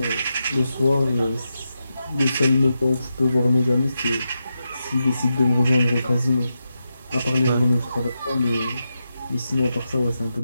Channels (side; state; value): both; inverted; correlation -0.88